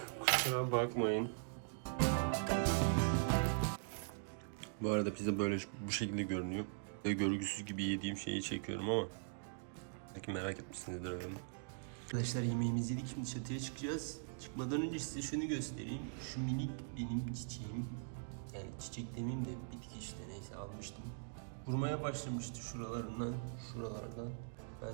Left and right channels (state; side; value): silent; left; digital silence